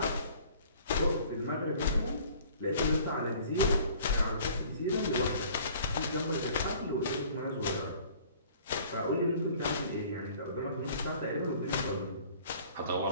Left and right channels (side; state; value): both; inverted; correlation -0.51